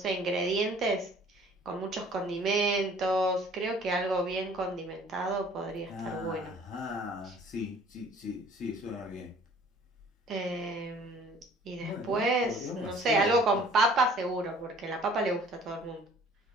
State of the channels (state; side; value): normal; both; correlation 0.53